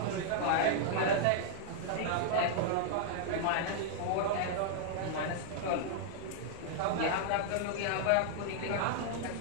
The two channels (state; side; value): different; both; correlation -0.01